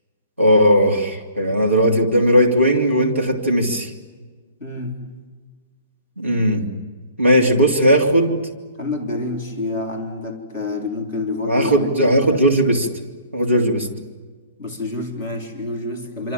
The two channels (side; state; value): both; inverted; correlation -0.56